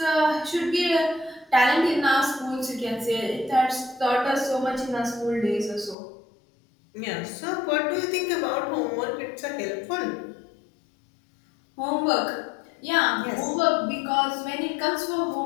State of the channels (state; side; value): drops out; right; at 6.0 s